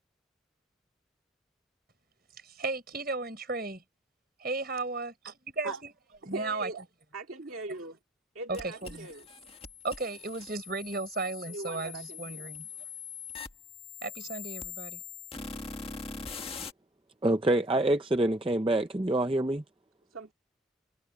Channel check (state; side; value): normal; both; correlation 0.46